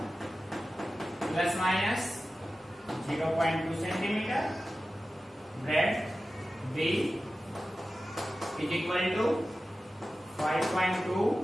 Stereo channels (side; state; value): both; normal; correlation 0.94